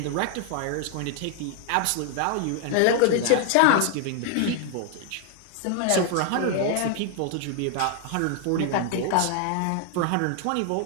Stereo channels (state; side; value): different; both; correlation 0.00